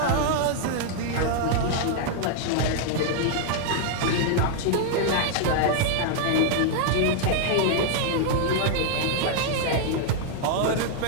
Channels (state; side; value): different; both; correlation 0.00